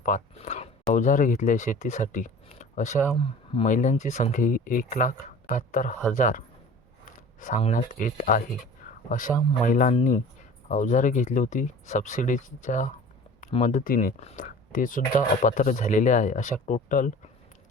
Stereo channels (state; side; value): normal; both; correlation 0.42